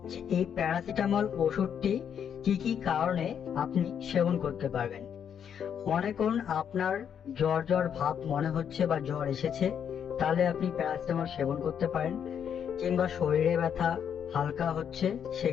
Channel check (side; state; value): right; quieter; 8.3 dB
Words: যে এই প্যারাসিটামল ওষুধটি কি কি কারণে আপনি সেবন করতে পারবেন। মনে করুন আপনার জ্বর জ্বর ভাব মনে হচ্ছে বা জ্বর এসেছে, তাহলে আপনি প্যারাসিটামল সেবন করতে পারেন। কিংবা শরীরে ব্যথা হালকা হচ্ছে,